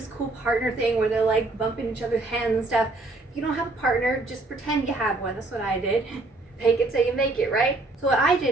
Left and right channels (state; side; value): quieter; left; 3.0 dB